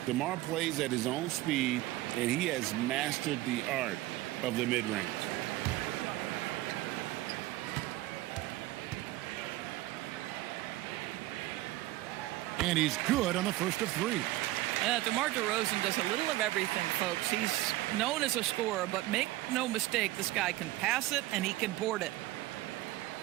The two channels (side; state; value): left; quieter; 17.3 dB